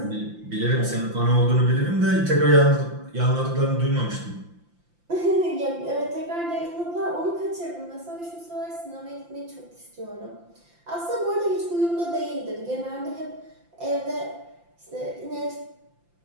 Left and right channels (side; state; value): left; late; 5.8 ms